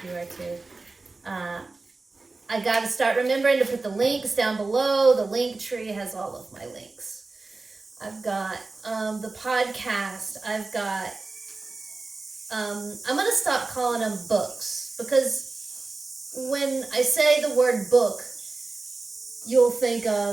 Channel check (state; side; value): quieter; left; 3.6 dB